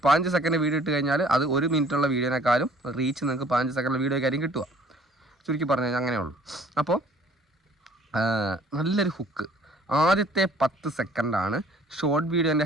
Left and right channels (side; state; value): both; normal; correlation 0.55